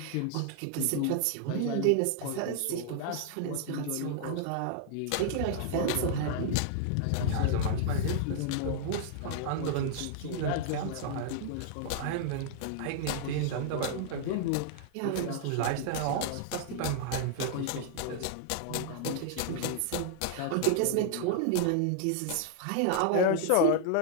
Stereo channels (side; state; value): both; different; correlation -0.01